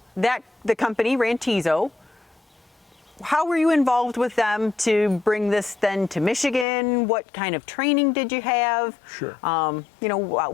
The company, Rantizo, how were you involved with them to bring this then to Michigan? What kind of training did you have? Sure.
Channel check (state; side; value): drops out; right; at 6.7 s